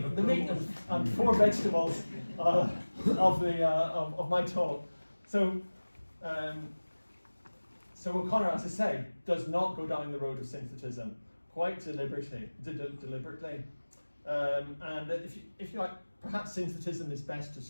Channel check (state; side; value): inverted; both; correlation -1.00